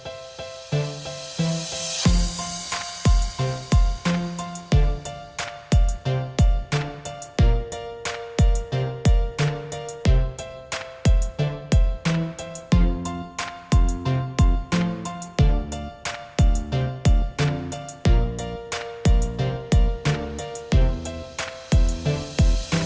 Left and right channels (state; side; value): identical; both; correlation 1.00